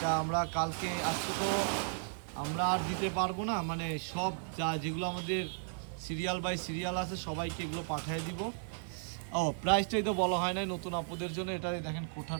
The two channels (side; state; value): left; silent; digital silence